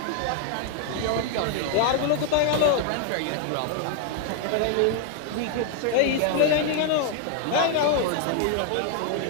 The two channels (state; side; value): different; both; correlation 0.00